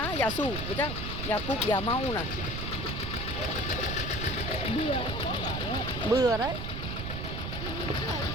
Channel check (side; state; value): right; noise; rumble, 4 dB below the sound